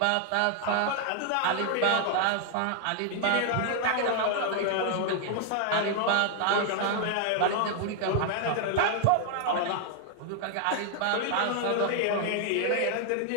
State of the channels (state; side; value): different; both; correlation 0.00